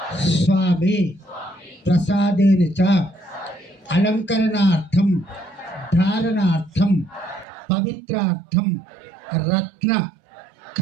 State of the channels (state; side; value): drops out; left; at 7.5 s